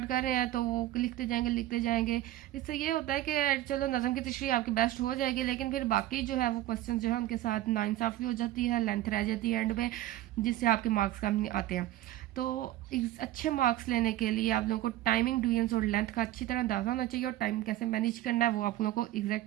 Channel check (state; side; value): quieter; left; 14.6 dB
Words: कर रहे हैं तो वो लिखते जाएंगे। इससे ये होता है कि चलो नज़म की तशरीह आपकी बेस्ट हो जाएगी, लेकिन फिर बाकी जो है वो क्वेश्चन जो है उनके साथ नाइंसाफ़ी हो जाती है, लेंथ रह जाती है एंड में, जिससे आपके मार्क्स कम नहीं आते हैं। तो अच्छे मार्क्स लेने के लिए आप लोगों को टाइमिंग, डिवीजन्स और लेंथ का अच्छी तरह अंदाजा होना चाहिए, और टाइम कैसे मैनेज करना है वो आप लोगों को